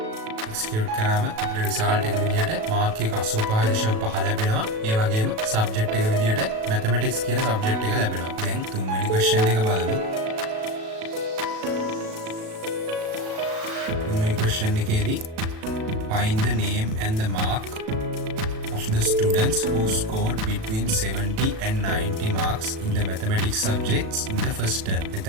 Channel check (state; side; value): late; left; 37 ms